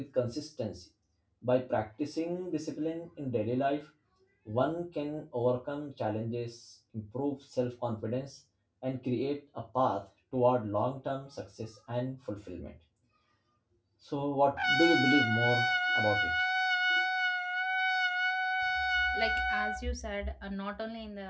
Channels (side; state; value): both; identical; correlation 1.00